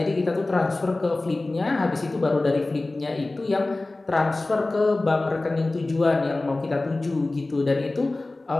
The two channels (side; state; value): right; quieter; 3.0 dB